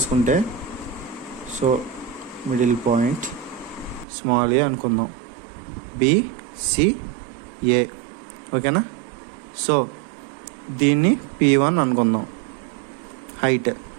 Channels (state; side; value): drops out; left; at 4.0 s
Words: so middle point small ఏ అనుకుందాం, BCA. ఓకేనా? So దీన్ని P1 అనుకుందాం. Height